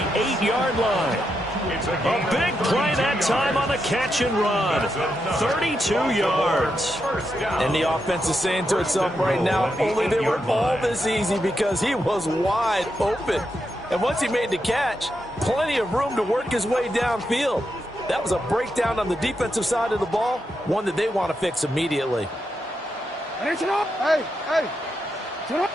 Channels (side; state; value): both; normal; correlation 0.84